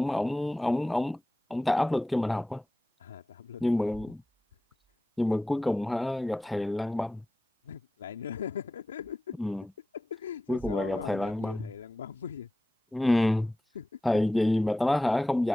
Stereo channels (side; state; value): both; normal; correlation 0.95